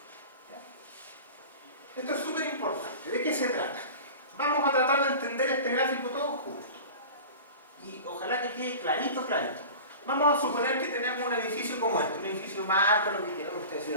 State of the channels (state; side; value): inverted; both; correlation -0.36